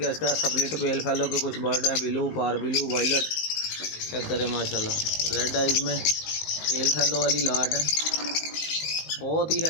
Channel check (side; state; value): right; late; 19 ms